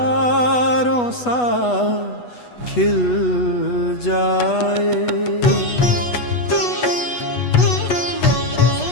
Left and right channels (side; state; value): right; late; 8.2 ms